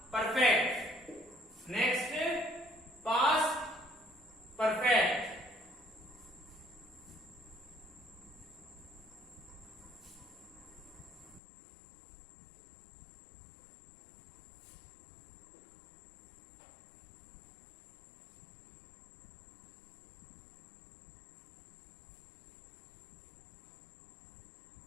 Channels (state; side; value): drops out; right; at 11.4 s